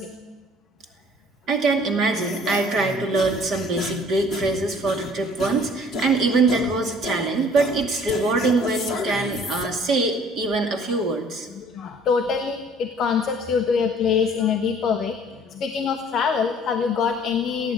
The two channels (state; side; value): normal; both; correlation 0.54